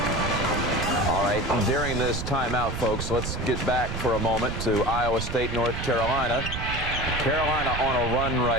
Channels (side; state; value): right; noise; rumble, 5 dB below the sound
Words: All right, during this timeout, folks. Let's get back for a moment to Iowa State, North Carolina. Carolina on a run